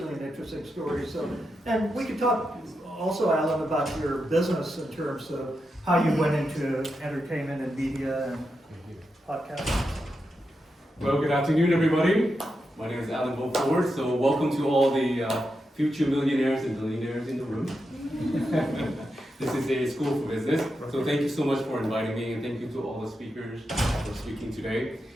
an interesting story. So, and we could talk also, Alan, about your business in terms of how you went into entertainment and media and podcasts. Well, good afternoon, everybody. My name is Alan Beaufort, so welcome to all the future millionaires and billionaires in the room. This is a school for business, so thank you so much for inviting me, and thank you to all the speakers for speaking today.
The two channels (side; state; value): both; normal; correlation 0.87